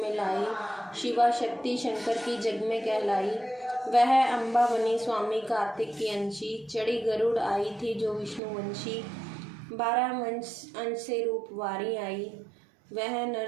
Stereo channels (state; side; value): drops out; left; at 8.4 s